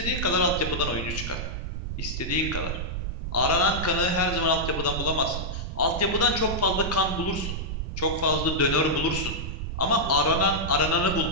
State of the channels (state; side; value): noise; right; rumble, 4 dB below the sound